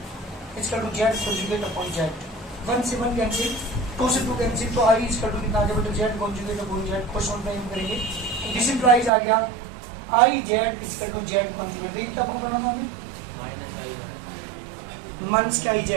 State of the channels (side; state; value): left; drops out; at 9.1 s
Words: equal to z conjugate upon z. 1 से 1 कैंसिल, 2 से 2 कैंसिल, तो आई इक्वल टू कितना आ गया बेटा z conjugate upon z. Question time करेंगे, दिस इंप्लाइज आ गया i z equal to z conjugate. देखिए क्या प्रूव करना था हमें? माइनस के आई